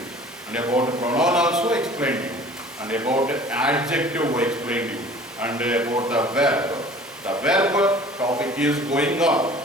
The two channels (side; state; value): both; normal; correlation 0.47